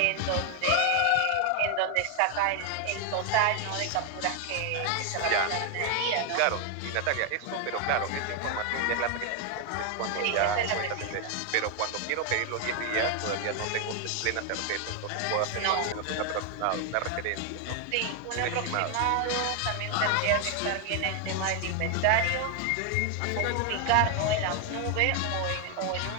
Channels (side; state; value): both; different; correlation 0.01